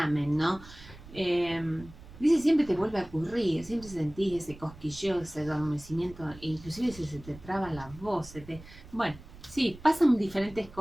¿no? Eh, dice, siempre te vuelve a ocurrir, siempre sentís ese cosquilleo, ese adormecimiento, e inclusive se te traba la voz, bueno, sí, pasan diferentes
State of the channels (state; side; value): noise; right; rumble, 18 dB below the sound